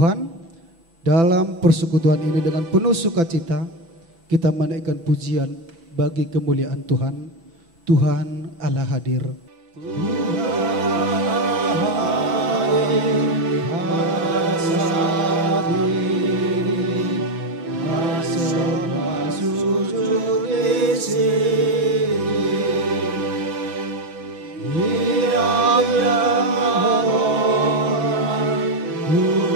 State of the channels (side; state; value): left; late; 6.0 ms